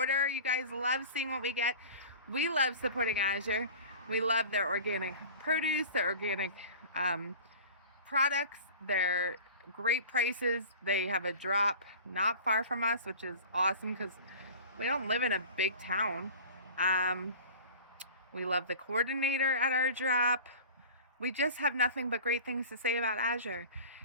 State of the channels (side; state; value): both; inverted; correlation -0.40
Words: You guys love seeing what we get. We love supporting Azure. We love their organic produce, their organic products, their great prices. They have a drop not far from us, which is awesome because we don't live in a big town. We love the coordinator at our drop. We just have nothing but great things to say about Azure.